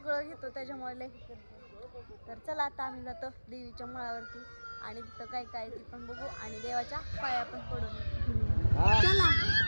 घेतो, त्याच्यामुळे लय ही करते. तर चला आता आम्ही जातो देवीच्या माळावरती आणि तिथं काय काय ती पण बघू आणि देवाच्या पाया पण पडून. चला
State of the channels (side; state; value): both; inverted; correlation -1.00